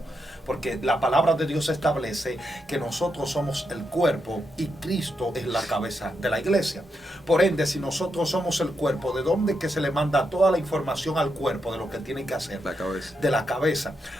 Porque la palabra de Dios establece que nosotros somos el cuerpo y Cristo es la cabeza de la iglesia. Por ende, si nosotros somos el cuerpo, ¿de dónde es que se le manda toda la información al cuerpo de lo que tiene que hacer? La cabeza. De la cabeza.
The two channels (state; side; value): normal; both; correlation 0.83